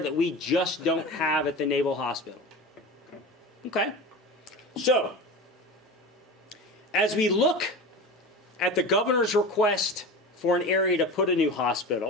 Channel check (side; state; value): both; normal; correlation 0.30